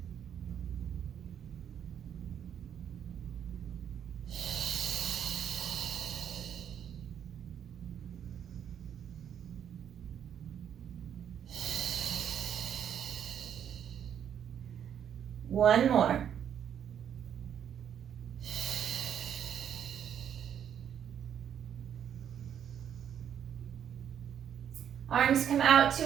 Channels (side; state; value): left; quieter; 9.1 dB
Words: One more. Arms come out